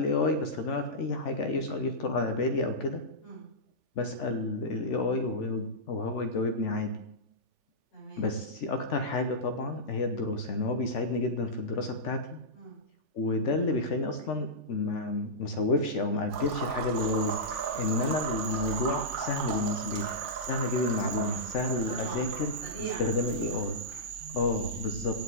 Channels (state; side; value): late; right; 3.4 ms